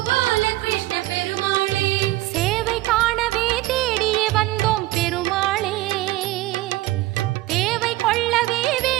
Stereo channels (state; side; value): quieter; left; 17.7 dB